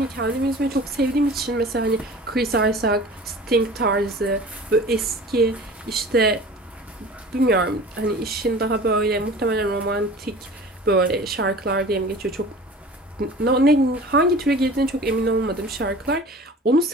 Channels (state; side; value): normal; both; correlation 0.41